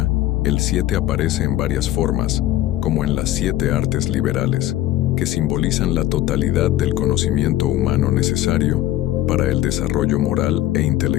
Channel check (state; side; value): quieter; right; 14.2 dB